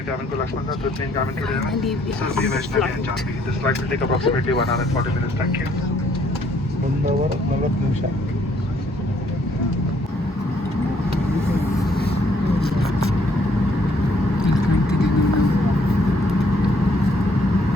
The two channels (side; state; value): both; normal; correlation 0.66